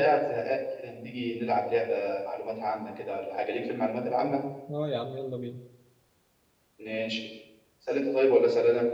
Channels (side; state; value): both; identical; correlation 1.00